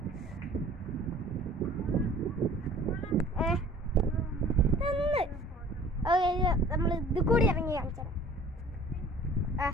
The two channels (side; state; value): both; normal; correlation 0.48